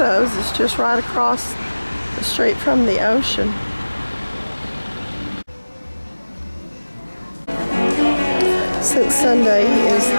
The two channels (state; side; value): inverted; both; correlation -1.00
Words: is just right across the street from the ocean. Since Sunday is